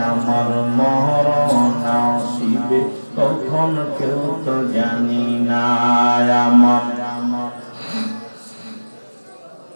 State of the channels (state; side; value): inverted; both; correlation -1.00